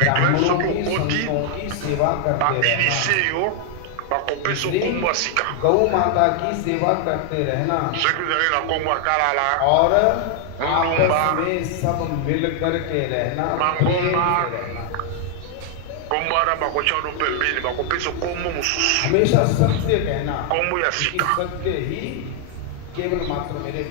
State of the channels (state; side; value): different; both; correlation 0.00